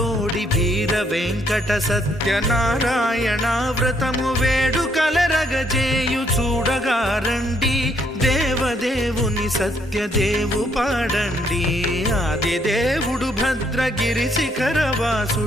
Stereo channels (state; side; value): normal; both; correlation 0.70